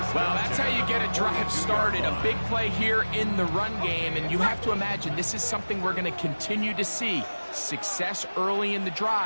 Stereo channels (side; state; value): both; inverted; correlation -1.00